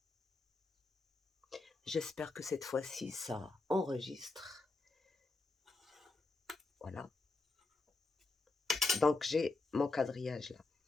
J'espère que cette fois-ci, ça enregistre. Voilà. Donc, j'ai mon quadrillage là.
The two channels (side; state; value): right; quieter; 3.5 dB